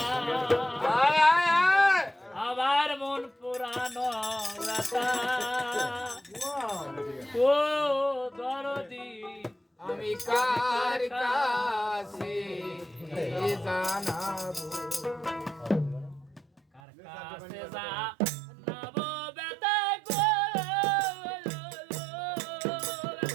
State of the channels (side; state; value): left; drops out; at 16.8 s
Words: আবার মন পুরানো বেতা ও দরদি আমি কার কাছে জানাবো কার কাছে যা নাবো বেতা গো